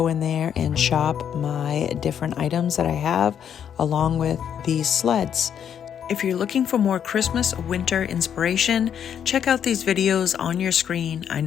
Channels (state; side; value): quieter; right; 8.7 dB